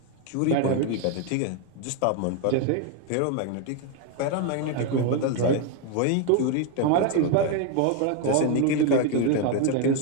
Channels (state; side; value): different; both; correlation 0.01